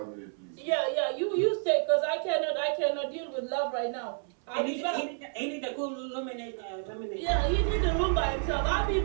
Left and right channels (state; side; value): silent; left; 58 dB below the other